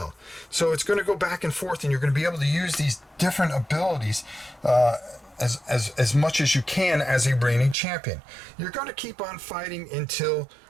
So it's going to go back and forth, and you're going to be able to use these different abilities as much as you can as a reigning champion. You're going to keep on fighting until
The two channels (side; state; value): left; drops out; at 7.8 s